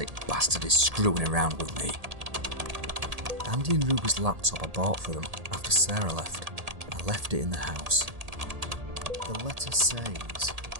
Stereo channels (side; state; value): left; late; 1.8 ms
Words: bastard is screwing around with me. Andy and Ruby's laptop I bought for them after Sarah left. I left it in the house. The letter says,